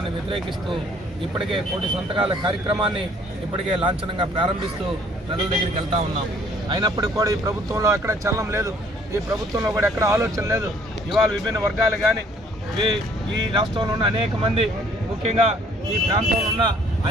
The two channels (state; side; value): normal; both; correlation 0.60